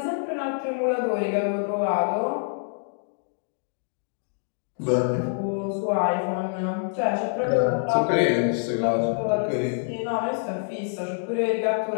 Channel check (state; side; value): silent; right; 61 dB below the other